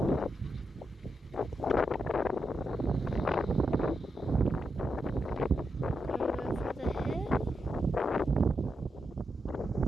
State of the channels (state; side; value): normal; both; correlation 0.85